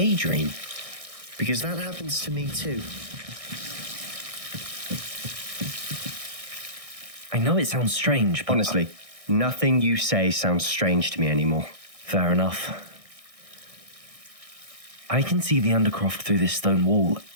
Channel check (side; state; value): left; late; 1.6 ms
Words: Because that happens to me too. I know it sounds strange, but... Honestly, nothing you say sounds strange to me anymore. Fair enough. I can see the Undercroft through this stone wall,